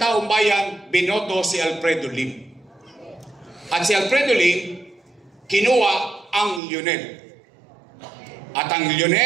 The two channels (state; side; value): drops out; left; at 6.6 s